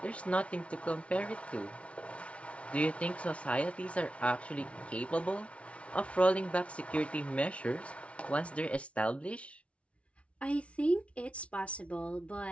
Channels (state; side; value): late; right; 0.062 ms